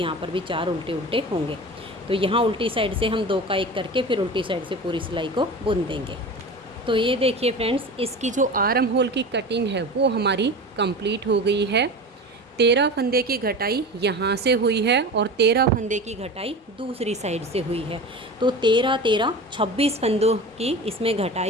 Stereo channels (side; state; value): both; normal; correlation 0.32